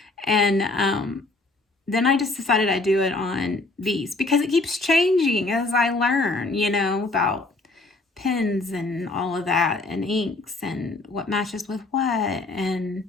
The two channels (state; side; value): quieter; right; 3.1 dB